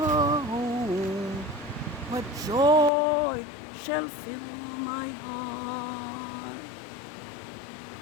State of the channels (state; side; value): drops out; right; at 2.9 s